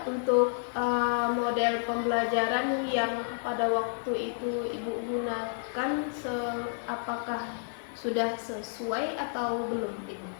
untuk model pembelajaran yang pada waktu itu Ibu gunakan, apakah sudah sesuai atau belum Ibu?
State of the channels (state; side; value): silent; right; digital silence